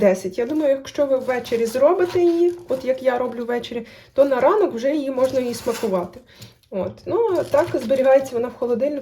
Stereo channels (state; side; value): identical; both; correlation 1.00